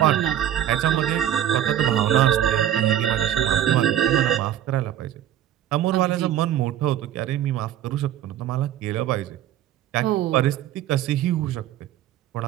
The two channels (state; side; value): quieter; left; 11.3 dB